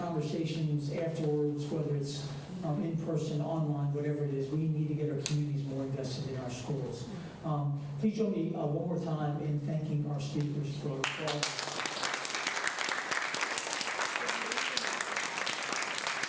afterwards, whether it's in person, online, whatever it is, we need to get our communities more invested in our schools. Please join me one more time in thanking our speakers for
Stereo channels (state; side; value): identical; both; correlation 1.00